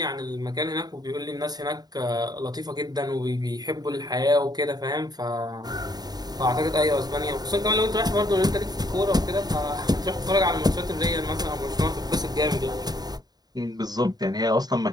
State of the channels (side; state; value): left; late; 0.19 ms